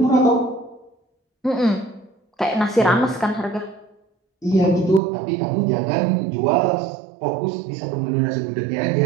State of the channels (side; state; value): left; drops out; at 5.0 s